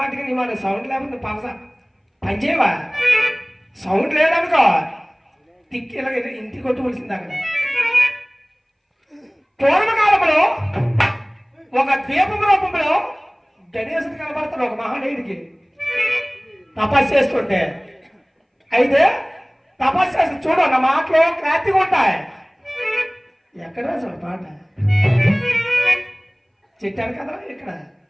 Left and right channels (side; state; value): both; identical; correlation 1.00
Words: నీ మాట సౌండ్ లేకపోతే పనిచేయవా? సౌండ్ లేదనుకో తిక్కి ఇలా ఇంటికి కొట్టుకోవాల్సింది. అక్కడ పూర్వకాలంలో ఒక ద్వీపం రూపంలో గణేశుడు కనబడతాడు ఒక మహానీయుడికి తపస్సు చేస్తుంటే. అయితే తపస్సు చేసి చూడు, నా మాటలు క్లారిటీగా ఉంటాయి. ఎక్కడ అసలు పాట చెట్టాను కదా ఇక్కడ